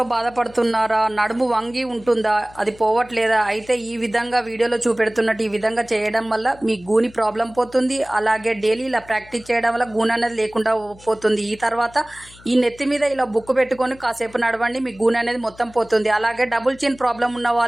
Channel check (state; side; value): noise; left; hum, 23 dB below the sound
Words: బాధపడుతున్నారా? నడుము వంగి ఉంటుందా? అది పోవట్లేదా? అయితే ఈ విధంగా వీడియోలో చూపెడుతున్నట్టు ఈ విధంగా చేయడం వల్ల మీ గూని ప్రాబ్లం పోతుంది. అలాగే డైలీ ఇలా ప్రాక్టీస్ చేయడం వల్ల గూని అనేది లేకుండా పోతుంది. ఈ తర్వాత ఈ నెత్తి మీద ఇలా బుక్కు పెట్టుకొని కాసేపు నడవండి, మీ గూని అనేది మొత్తం పోతుంది. అలాగే డబుల్ చిన్ ప్రాబ్లం ఉన్న